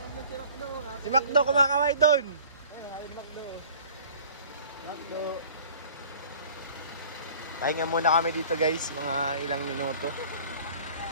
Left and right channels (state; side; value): inverted; both; correlation -0.48